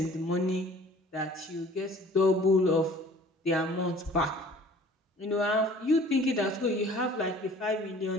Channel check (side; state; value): both; normal; correlation 0.50